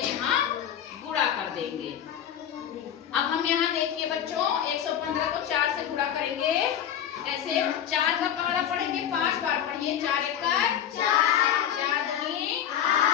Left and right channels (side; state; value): right; quieter; 9.7 dB